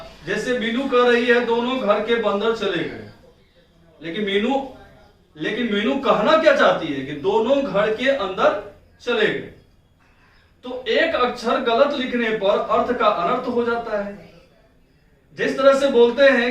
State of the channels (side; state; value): both; identical; correlation 1.00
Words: जैसे मीनू कह रही है दोनों घर के बंदर चले गए, लेकिन मीनू कहना क्या चाहती है कि दोनों घर के अंदर चले गए। तो एक अक्षर गलत लिखने पर अर्थ का अनर्थ हो जाता है। जिस तरह से बोलते